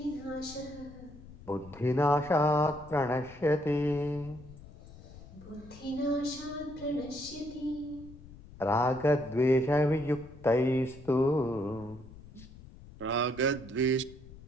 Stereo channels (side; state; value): left; noise; rumble, 18 dB below the sound